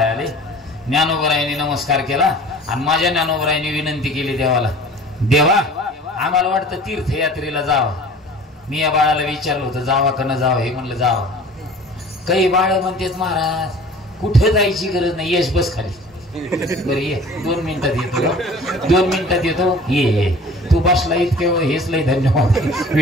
आले. ज्ञानोबरायांनी नमस्कार केला आणि माझ्या ज्ञानोबरायांनी विनंती केली देवाला, देवा आम्हाला वाटतं तीर्थयात्रेला जावं. मी या बाळाला विचारलं होतं, जावा का न जावं. हे म्हणलं जावं. काही बाळ म्हणतात, महाराज कुठे जायची गरज नाही, यश बस खाली. बरं ये, 2 मिनिटात येतो, 2 मिनिटात येतो, ये. तू बसला इतके हेच लय धन्यवाद.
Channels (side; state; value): both; normal; correlation 0.45